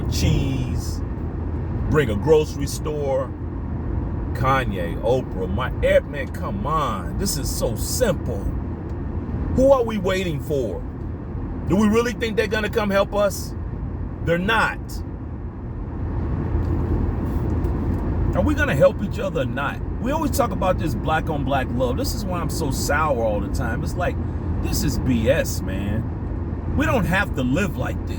cheese. Bring a grocery store. Kanye, Oprah, man, come on. This is so simple. Who are we waiting for? Do we really think they're gonna come help us? They're not. Are we gonna help each other or not? We always talk about this black on black love. This is why I'm so sour all the time. It's like, this is BS, man. We don't have to live like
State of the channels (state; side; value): identical; both; correlation 1.00